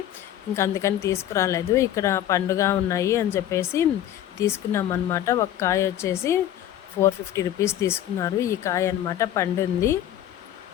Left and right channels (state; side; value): quieter; right; 11.8 dB